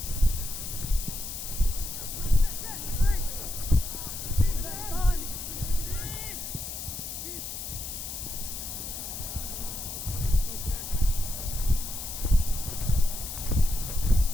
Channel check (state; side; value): noise; left; hiss, 7 dB below the sound